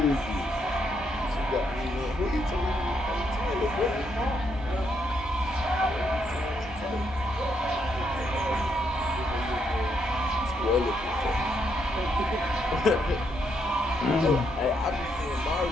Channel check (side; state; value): both; normal; correlation 0.76